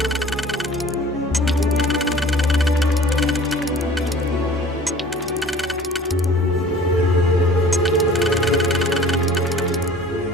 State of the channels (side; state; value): both; normal; correlation 0.47